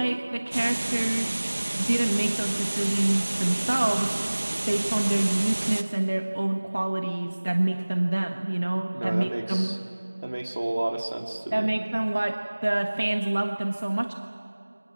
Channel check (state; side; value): inverted; both; correlation -1.00